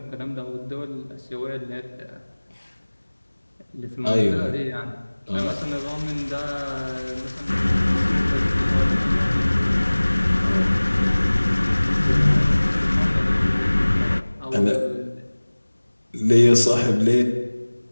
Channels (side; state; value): both; inverted; correlation -1.00